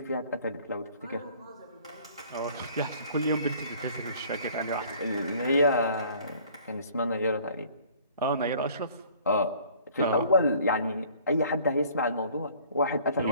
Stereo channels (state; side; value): inverted; both; correlation -0.53